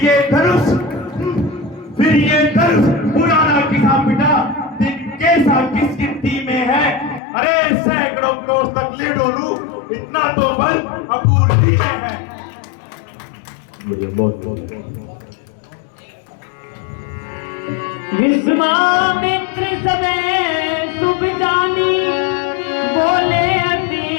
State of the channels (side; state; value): right; drops out; at 7.2 s